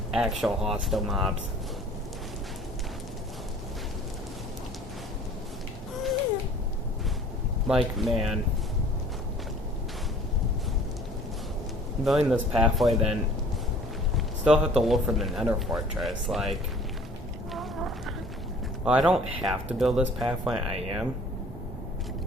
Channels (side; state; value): both; normal; correlation 0.51